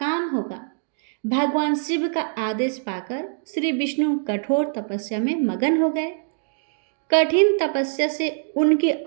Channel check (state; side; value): silent; left; digital silence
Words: होगा। भगवान शिव का आदेश पाकर श्री विष्णु कठोर तपस्या में मगन हो गए। कठिन तपस्या से उनके